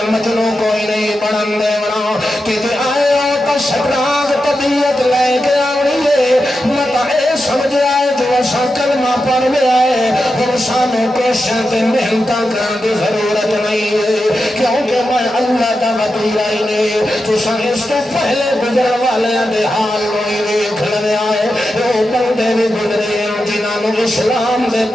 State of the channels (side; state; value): both; normal; correlation 0.89